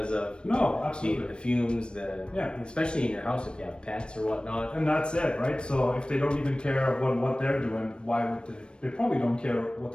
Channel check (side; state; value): right; late; 0.055 ms